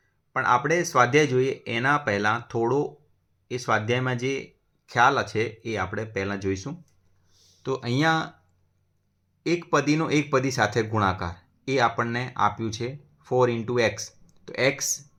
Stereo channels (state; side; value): identical; both; correlation 1.00